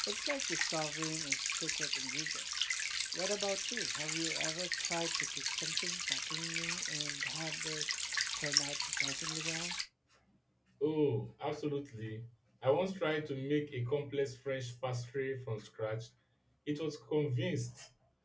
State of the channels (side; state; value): both; identical; correlation 1.00